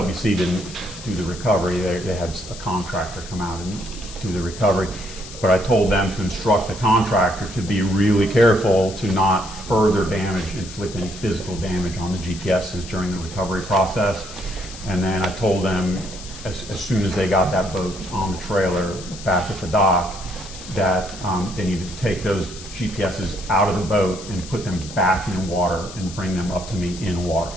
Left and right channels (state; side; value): noise; left; hiss, 14 dB below the sound